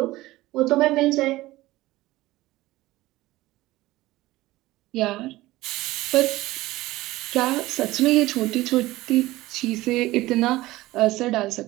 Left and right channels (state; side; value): quieter; left; 17.8 dB